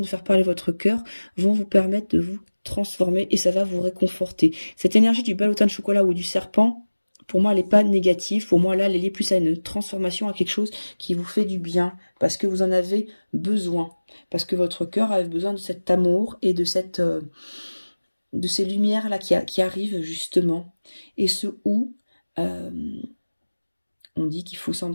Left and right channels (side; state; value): both; inverted; correlation -1.00